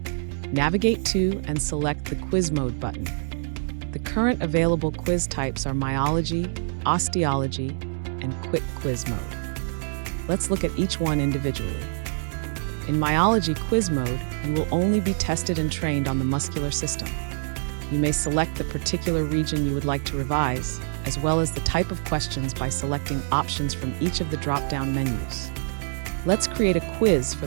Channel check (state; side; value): silent; left; 61 dB below the other